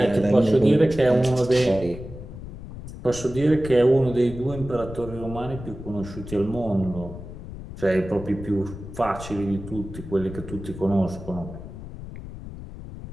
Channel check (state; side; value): noise; left; rumble, 12 dB below the sound